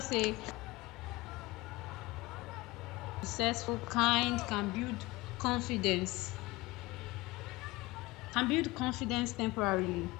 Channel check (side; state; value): right; quieter; 21.2 dB